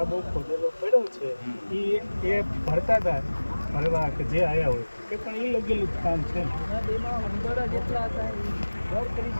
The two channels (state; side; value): inverted; both; correlation -1.00